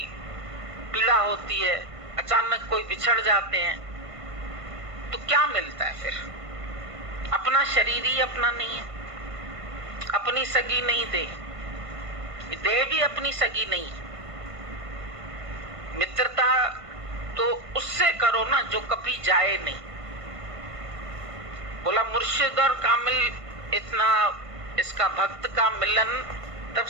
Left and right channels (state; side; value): late; left; 1.5 ms